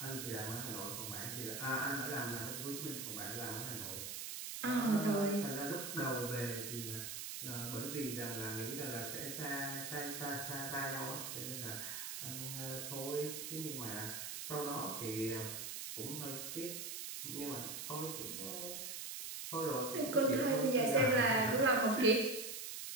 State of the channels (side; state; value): right; noise; hiss, 6 dB below the sound